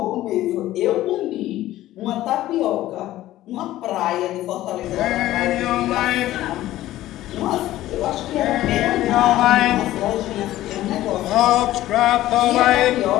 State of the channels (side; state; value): right; quieter; 14.8 dB